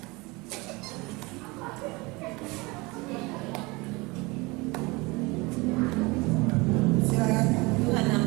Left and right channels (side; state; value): left; quieter; 24.8 dB